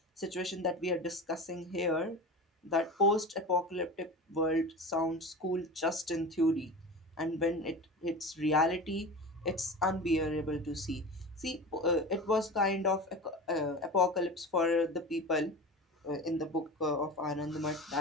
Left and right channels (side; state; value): both; normal; correlation 0.31